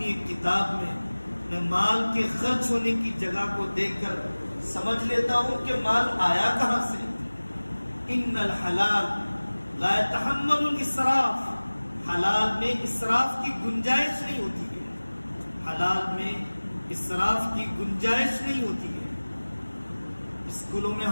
ایک کتاب میں مال کے خرچ ہونے کی جگہ کو دیکھ کر سمجھ لیتا ہوں کہ مال آیا کہاں سے۔ ان الحلال لا يتحمل الاسراف، حلال میں اسراف کی گنجائش نہیں ہوتی ہے، حلال میں اسراف کی گنجائش نہیں ہوتی ہے۔ اسکولوں میں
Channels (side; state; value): both; inverted; correlation -1.00